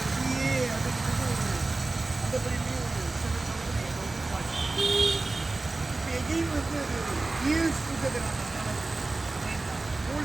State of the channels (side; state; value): left; quieter; 3.3 dB